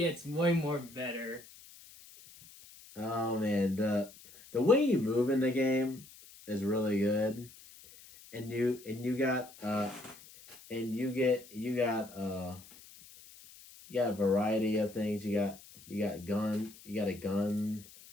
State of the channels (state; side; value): noise; left; hiss, 21 dB below the sound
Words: way more better. Oh man, the way you move in the game is really good, and you You got a variety of things. You got a gun. You